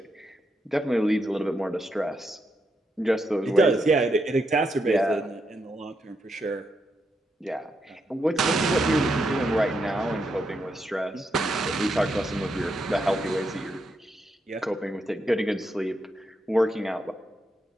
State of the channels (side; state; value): both; normal; correlation 0.81